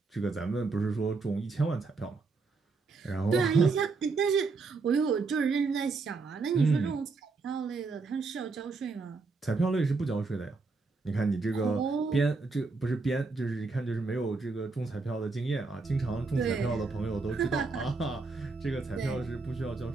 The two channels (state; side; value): quieter; left; 4.1 dB